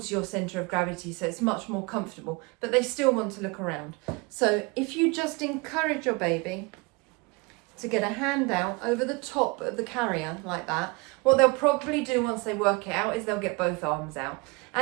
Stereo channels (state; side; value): quieter; left; 27.2 dB